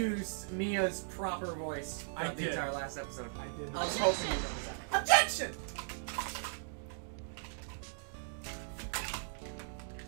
Mia's proper voice I throughout the did. entire last episode. I did. I was hoping you noticed that. Objection!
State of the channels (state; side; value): silent; left; digital silence